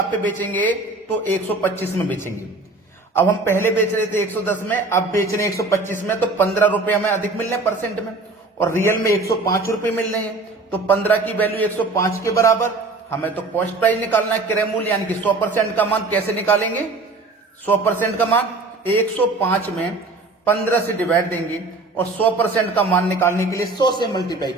पे बेचेंगे तो 125 में बेचेंगे। अब हम पहले बेच रहे थे 110 में, अब बेच रहे हैं 125 में, तो 15 रुपए हमें अधिक मिल रहे हैं परसेंट में, और रियल में 105 रुपए मिल रहे हैं। तो 15 की वैल्यू 105 के बराबर। हमें तो कॉस्ट प्राइस निकालना है, क्रय मूल्य यानी कि 100% का मान। कैसे निकालेंगे 100% का मान? 105 में 15 से डिवाइड देंगे और 100% का मान निकालने के लिए 100 से मल्टीप्लाई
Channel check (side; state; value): left; quieter; 3.3 dB